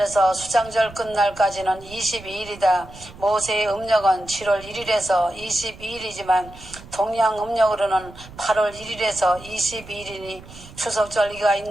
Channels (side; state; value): right; noise; rumble, 18 dB below the sound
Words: 수장절 끝날까지는 22일이다. 모세의 음력은 7월 1일에서 22일이지만 동양 음력으로는 8월 1일에서 22일이니 추석절기가